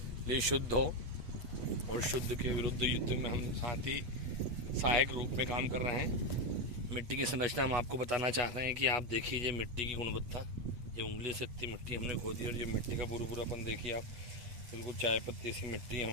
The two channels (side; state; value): left; late; 8.2 ms